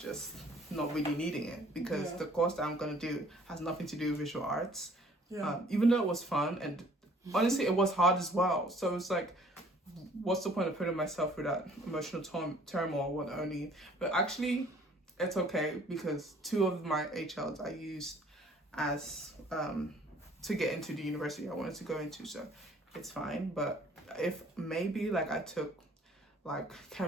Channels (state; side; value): normal; both; correlation 0.56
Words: not really needing it because the course that I'm going to do has nothing to do with visual arts. Even though it was fun, and honestly it was hard as well, so it's like, what's the point of putting myself through that emotional turmoil but actually it's okay, because 2 of my HLs I used as to get into the university I wanted to go into, so it's fine. But if maybe like I took like